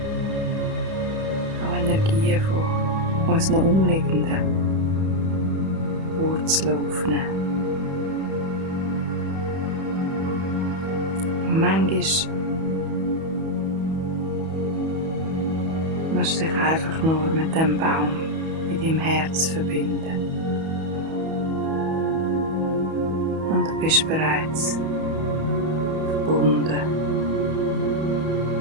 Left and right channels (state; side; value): late; left; 31 ms